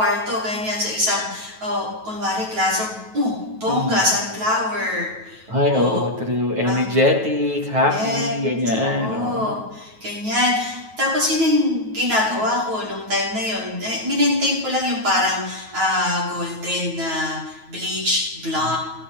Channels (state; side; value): late; left; 9.2 ms